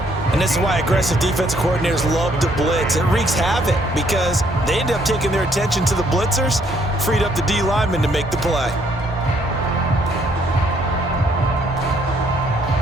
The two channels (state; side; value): normal; both; correlation 0.67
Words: And this is why aggressive defensive coordinators love to blitz. It wreaks havoc because they end up taking their attention to the blitzers, freed up the D lineman to make the play.